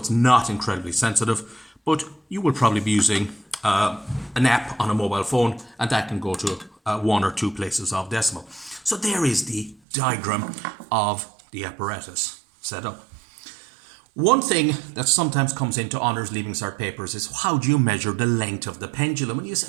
not incredibly sensitive, but you will probably be using an app on a mobile phone, and that can go to 1 or 2 places of decimal. So there is the diagram of the apparatus set up. One thing that sometimes comes into honours leaving cert papers is how do you measure the length of the pendulum? And you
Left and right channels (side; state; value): left; drops out; at 9.8 s